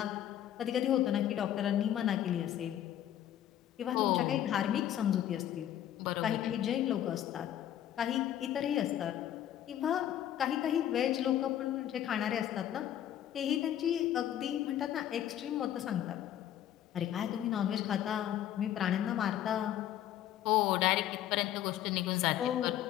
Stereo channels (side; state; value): right; quieter; 11.4 dB